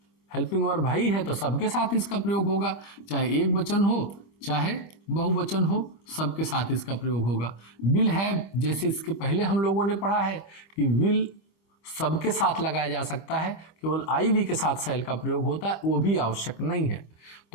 हेल्पिंग वर्ब ही है तो सबके साथ इसका प्रयोग होगा, चाहे एक वचन हो चाहे बहुवचन हो, सबके साथ इसका प्रयोग होगा। विल हैव, जैसे इसके पहले हम लोगों ने पढ़ा है कि विल सबके साथ लगाया जा सकता है, केवल आईवी के साथ शैल का प्रयोग होता है, वो भी आवश्यक नहीं है।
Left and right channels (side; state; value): right; late; 25 ms